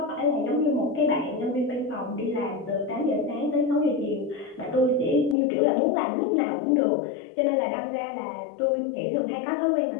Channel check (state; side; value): drops out; right; at 5.4 s